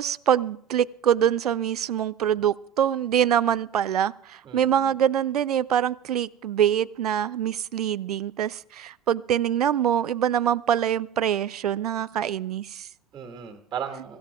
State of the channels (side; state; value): left; quieter; 9.4 dB